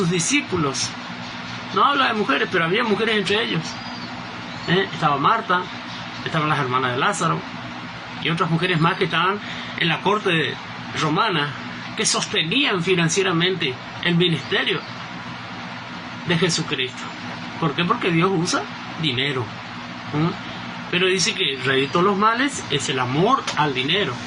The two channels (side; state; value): both; identical; correlation 1.00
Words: discípulos. No habla de mujeres, pero había mujeres entre ellos. Estaba Marta, estaban las hermanas de Lázaro y otras mujeres más que estaban en la corte romana, que sostenían financieramente el ministerio de Jesucristo. ¿Por qué? Porque Dios usa dinero. Pero dice que el rey de todos los males es el amor al dinero.